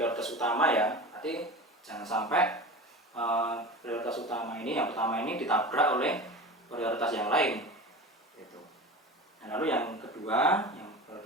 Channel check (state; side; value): normal; both; correlation 0.31